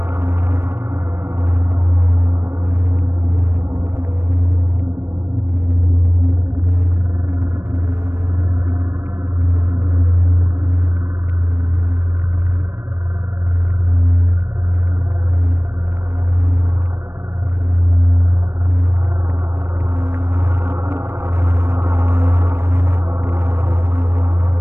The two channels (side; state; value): left; late; 0.12 ms